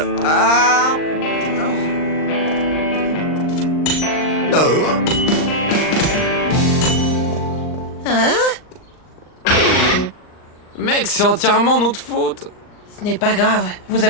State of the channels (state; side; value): late; right; 39 ms